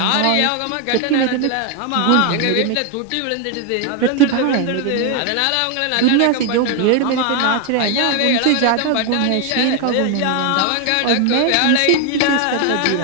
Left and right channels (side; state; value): both; different; correlation 0.01